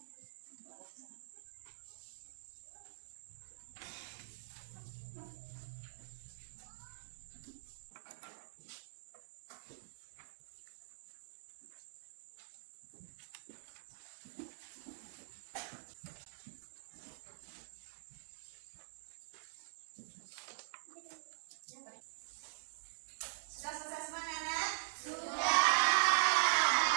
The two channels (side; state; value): left; silent; digital silence